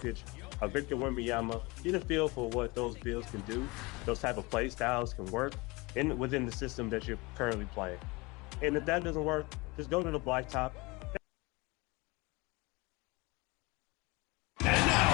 a Victor Wembanyama, get a feel for what those builds can do, those type of play styles can work within the system that you're currently playing. And if that doesn't work, just go to the blacktop. And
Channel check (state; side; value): quieter; right; 24.8 dB